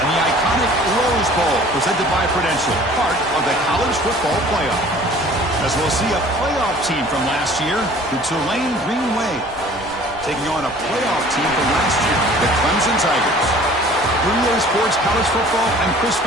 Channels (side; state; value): both; normal; correlation 0.49